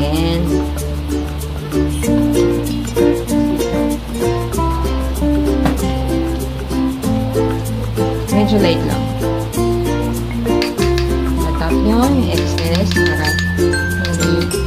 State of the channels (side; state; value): both; identical; correlation 1.00